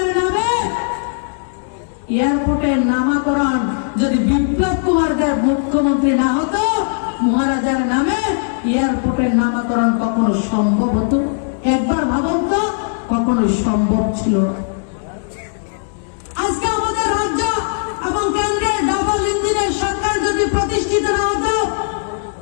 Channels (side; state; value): right; silent; digital silence